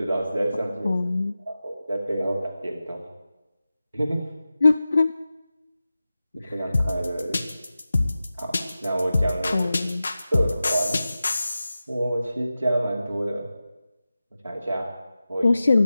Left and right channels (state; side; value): inverted; both; correlation -0.94